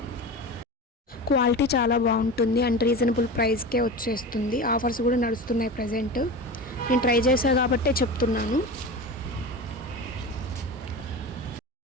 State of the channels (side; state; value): both; normal; correlation 0.29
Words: క్వాలిటీ చాలా బాగుంటుంది అండ్ రీజనబుల్ ప్రైస్కే వచ్చేస్తుంది. ఆఫర్స్ కూడా నడుస్తున్నాయి ప్రజెంట్. నేను ట్రై చేశా కాబట్టే చెప్తున్నాను.